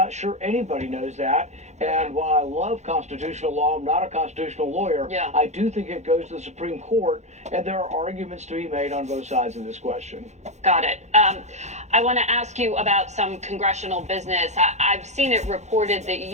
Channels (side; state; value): left; late; 0.33 ms